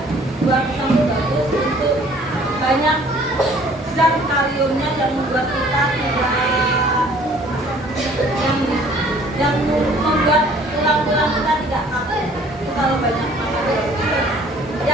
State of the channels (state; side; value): normal; both; correlation 0.55